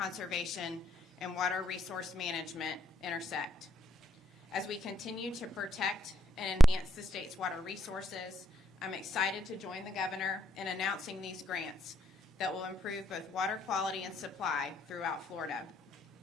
and water resource management intersect. As we continue to protect and enhance the state's water resources, I'm excited to join the Governor in announcing these grants that will improve both water quality and supply throughout Florida.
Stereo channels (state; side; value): normal; both; correlation 0.78